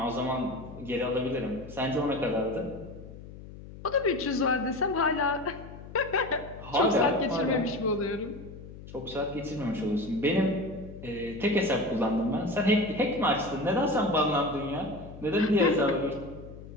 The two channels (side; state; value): left; noise; hum, 15 dB below the sound